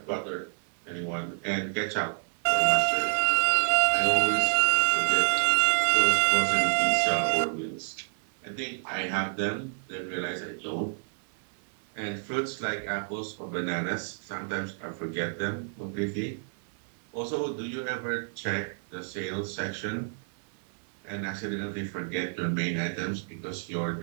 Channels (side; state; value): left; silent; 56 dB below the other